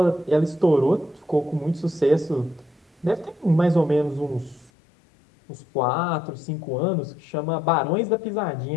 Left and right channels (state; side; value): drops out; right; at 4.7 s